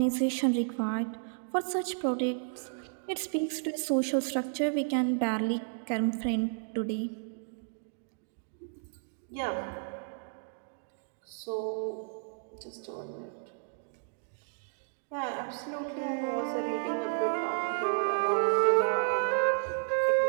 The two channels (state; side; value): silent; left; digital silence